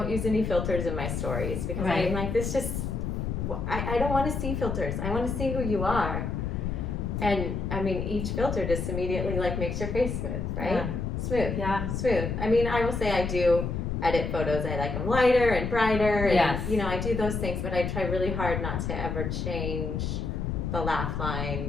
use any filters in my stories, because I'm like, this just, I don't want to see filters. I want to see who you are. And I mean, each filter just immediately like makes your face smooth, right? Yeah. Smooth. Yeah. Smooth. I mean, I will say I do edit photos. I like them lighter and brighter, and you know, I do those things, but I try really hard not to ever change the laugh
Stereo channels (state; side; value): noise; left; rumble, 2 dB below the sound